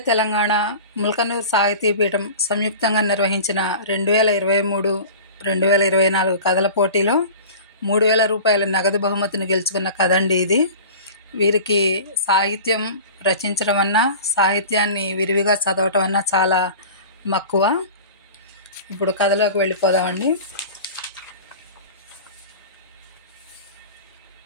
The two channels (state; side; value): inverted; both; correlation -0.37